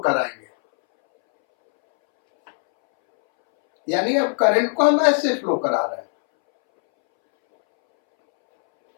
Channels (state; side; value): silent; right; 65 dB below the other